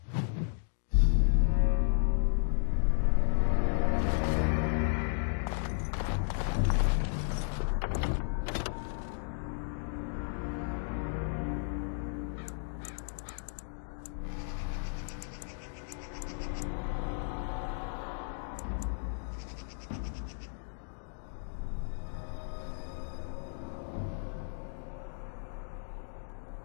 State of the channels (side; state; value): right; silent; digital silence